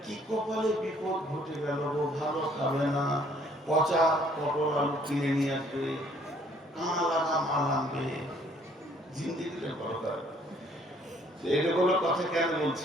কি কপালে বিপদ ঘটে গেল গো, ভালো খাবে না, পচা পটল আলু কিনে নিয়ে আসবে, কানা লাগা মাল আনবে, জিন্দিগিতে বড়কার। এগুলো কথা কেন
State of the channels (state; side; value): normal; both; correlation 0.62